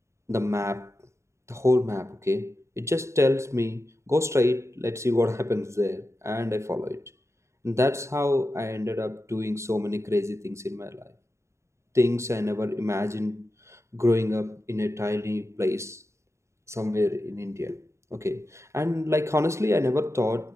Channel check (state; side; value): late; left; 0.14 ms